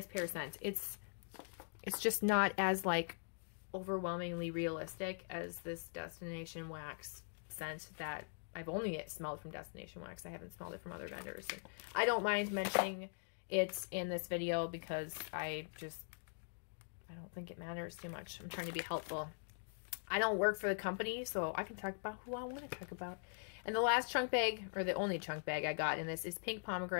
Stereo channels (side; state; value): right; silent; digital silence